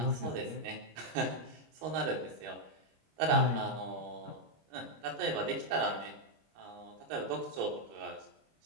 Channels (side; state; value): left; late; 25 ms